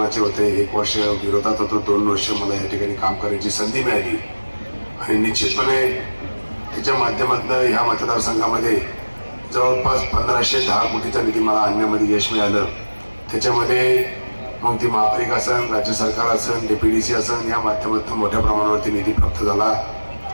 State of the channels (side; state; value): both; inverted; correlation -1.00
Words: होते, 1 वर्ष विरोधात होतो, 2 वर्ष मला या ठिकाणी काम करण्याची संधी मिळाली. आणि निश्चितपणे त्याच्या माध्यमातून ह्या मतदारसंघामध्ये जवळपास 1510 कोटीचा निधी मला आणण्यामध्ये यश मिळालं. त्याच्यामध्ये मग ती महापालिका असेल, राज्य सरकार असेल, DPDC असेल, या माध्यमातून मोठ्या प्रमाणावरती निधी प्राप्त झाला.